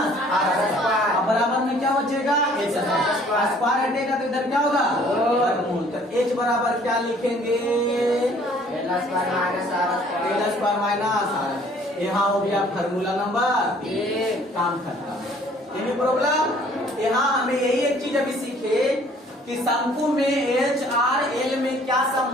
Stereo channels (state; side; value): normal; both; correlation 0.57